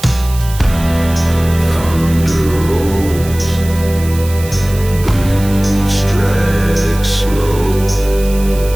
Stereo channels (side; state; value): right; noise; hiss, 15 dB below the sound